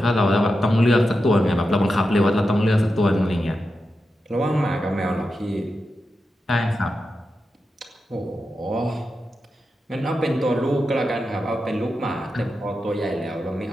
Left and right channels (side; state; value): both; normal; correlation 0.89